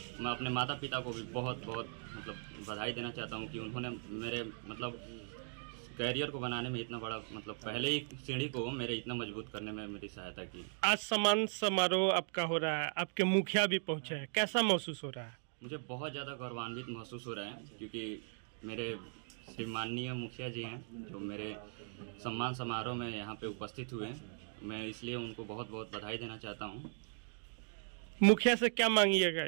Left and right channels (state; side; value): silent; left; 52 dB below the other